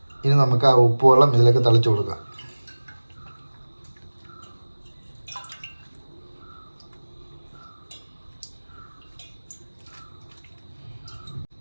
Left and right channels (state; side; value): inverted; both; correlation -1.00